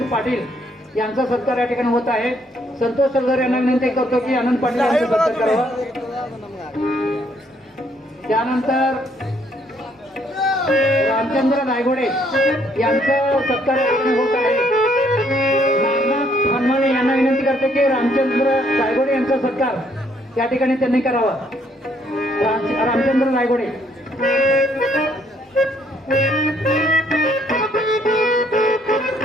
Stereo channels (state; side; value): normal; both; correlation 0.68